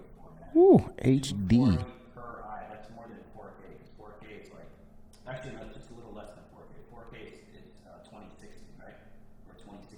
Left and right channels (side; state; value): both; identical; correlation 1.00